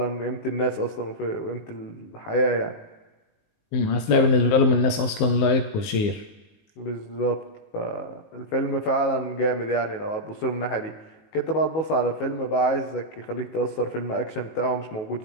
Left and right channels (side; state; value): right; late; 19 ms